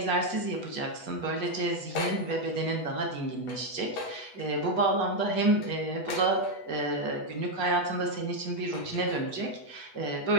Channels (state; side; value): late; right; 8.1 ms